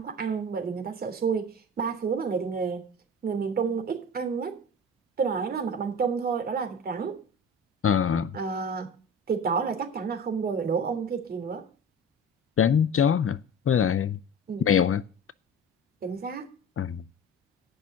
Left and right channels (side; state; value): both; normal; correlation 0.34